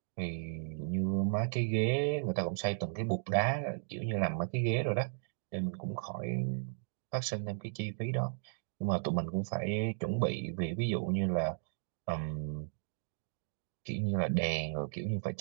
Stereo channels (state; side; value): silent; left; digital silence